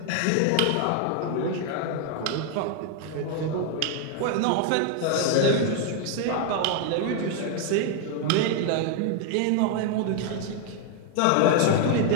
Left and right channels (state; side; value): different; both; correlation 0.00